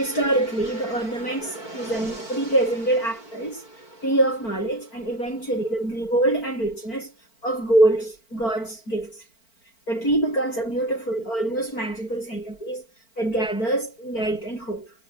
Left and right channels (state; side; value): late; right; 4.4 ms